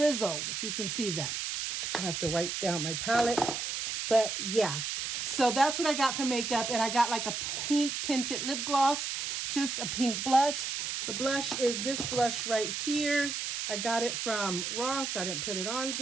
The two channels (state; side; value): noise; right; hiss, 3 dB below the sound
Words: if you can see that. I have to wipe down my palette. But yeah, so that's what I got for makeup. And I got like a pink tinted lip gloss, just a pink blush. The blush is this blush right here. I got it from Ross. I didn't put it on